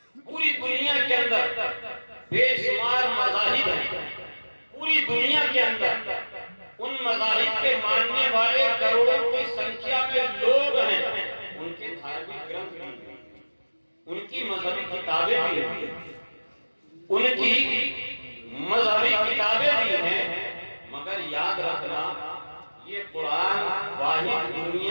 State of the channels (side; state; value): both; inverted; correlation -1.00